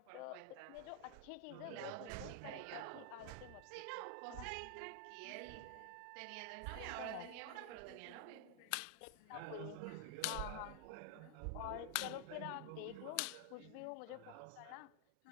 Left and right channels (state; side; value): different; both; correlation 0.00